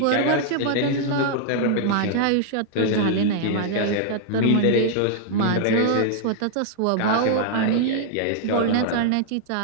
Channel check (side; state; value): both; different; correlation 0.00